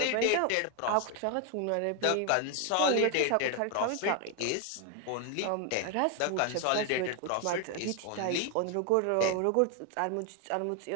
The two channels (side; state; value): both; different; correlation 0.01